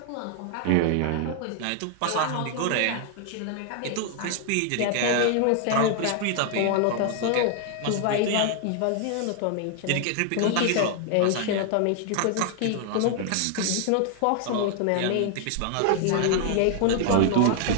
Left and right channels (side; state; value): both; different; correlation 0.00